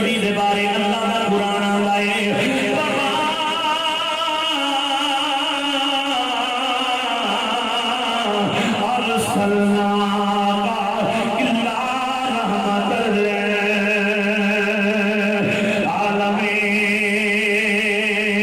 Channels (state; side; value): identical; both; correlation 1.00